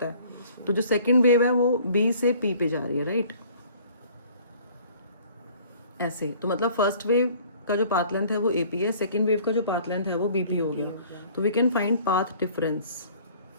है। तो जो सेकंड वेव है वो बी से पी पे जा रही है, राइट, ऐसे। तो मतलब फर्स्ट वेव का जो पाथ लेंथ है वो एपी है, सेकंड वेव का जो पाथ लेंथ है वो बीपी हो गया। तो we can find path difference.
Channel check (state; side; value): inverted; both; correlation -0.52